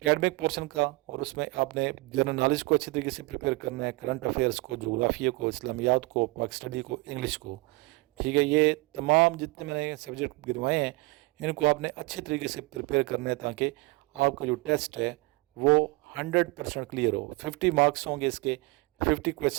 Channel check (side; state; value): left; quieter; 24.7 dB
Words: पोर्शन का, और उसमें आपने जनरल नॉलेज को अच्छी तरीके से प्रिपेयर करना है, करंट अफेयर्स को, जोग्राफिया को, इस्लामियात को, पाक स्टडी को, इंग्लिश को। ठीक है, ये तमाम जितने मैंने सब्जेक्ट गिनवाए हैं इनको आपने अच्छे तरीके से प्रिपेयर करना है ताकि आपका जो टेस्ट है वो 100% क्लियर हो। 50 मार्क्स होंगे, इसके 50